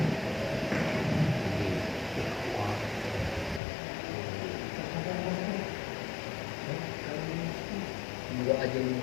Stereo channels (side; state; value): right; drops out; at 3.6 s